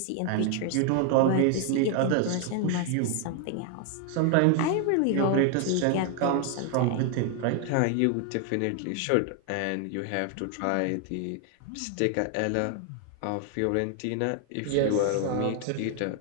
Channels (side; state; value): both; different; correlation 0.00